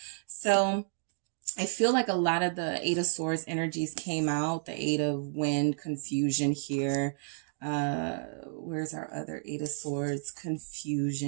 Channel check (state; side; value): silent; left; digital silence